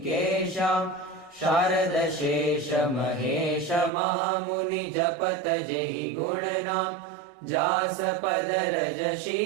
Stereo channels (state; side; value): drops out; left; at 3.9 s